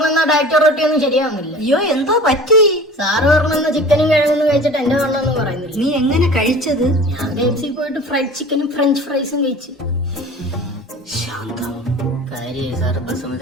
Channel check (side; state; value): both; normal; correlation 0.41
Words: ഡയറ്റ് റൊട്ടി ഒന്നും ശരിയാവുന്നില്ല. അയ്യോ എന്തോ പറ്റി? സാറ് പറഞ്ഞ ചിക്കനും കിഴങ്ങൊന്നും കഴിച്ചിട്ട് എന്റെ വണ്ണൊന്നും പറയുന്നില്ല. നീ എങ്ങനെ കഴിച്ചത്? ഞാൻ KFC പോയിട്ട് ഫ്രൈഡ് ചിക്കനും ഫ്രഞ്ച് ഫ്രൈസും കഴിച്ചു. ശാന്തം കാര്യം സാറ്